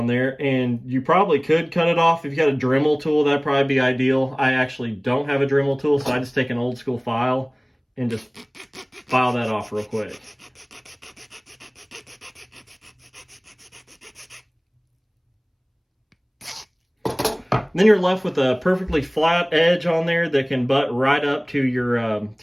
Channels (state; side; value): identical; both; correlation 1.00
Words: there. And you probably could cut it off if you got a Dremel tool. That'd probably be ideal. I actually don't have a Dremel tool, so I just take an old school file and just file that off real quick. Then you're left with a perfectly flat edge on there that can butt right up to